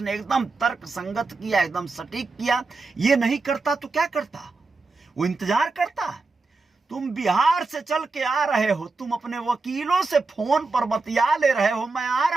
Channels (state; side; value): quieter; left; 3.8 dB